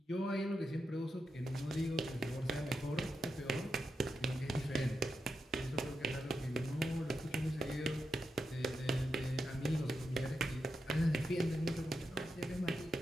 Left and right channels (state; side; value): normal; both; correlation 0.87